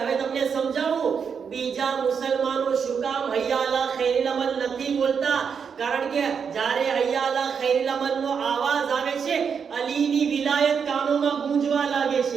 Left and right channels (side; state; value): left; quieter; 6.6 dB